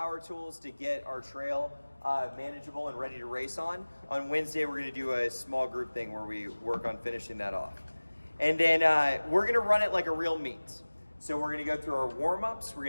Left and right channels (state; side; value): inverted; both; correlation -1.00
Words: tools to get our trail manageable and ready to race on. On Wednesday, we're going to do a small group thing where we work on finishing that off. And then we're going to run it like a real meet. So we're going to go through our warm-ups. We're